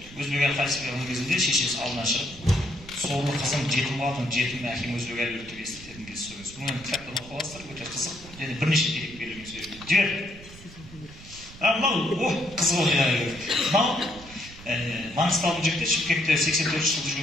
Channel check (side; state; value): right; noise; rumble, 18 dB below the sound